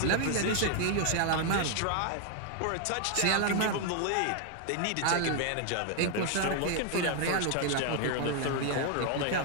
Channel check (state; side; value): different; both; correlation 0.00